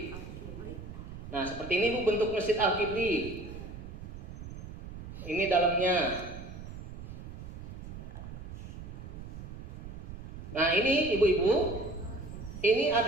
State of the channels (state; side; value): noise; right; rumble, 10 dB below the sound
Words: Nah, seperti ini Bu bentuk Masjid Al-Kibli. Ini dalamnya. Nah, ini ibu-ibu, ini